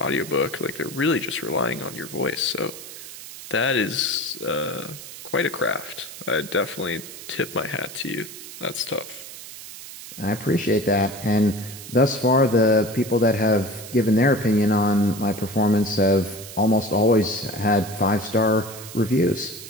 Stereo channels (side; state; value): right; noise; hiss, 13 dB below the sound